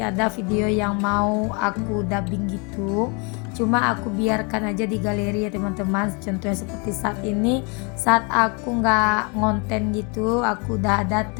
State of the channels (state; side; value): quieter; right; 32.7 dB